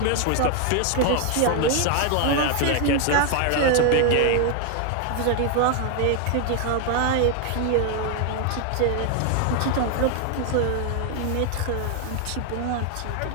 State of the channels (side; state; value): both; different; correlation 0.00